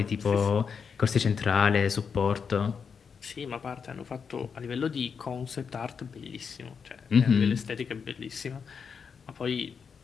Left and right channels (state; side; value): quieter; right; 6.2 dB